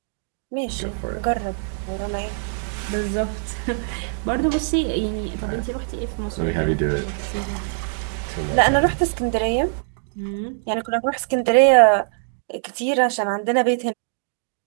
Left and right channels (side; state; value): left; silent; digital silence